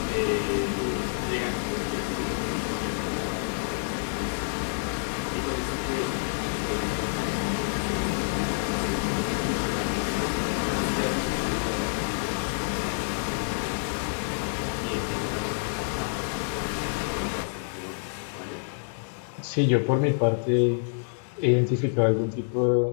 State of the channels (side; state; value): right; silent; digital silence